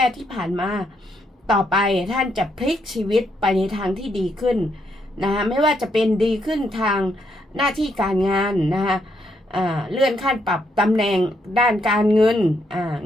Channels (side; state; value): both; normal; correlation 0.76